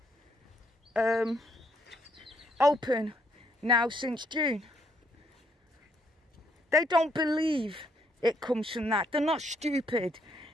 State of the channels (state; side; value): normal; both; correlation 0.71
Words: open now since June. They don't believe it comes from that. They're not stupid.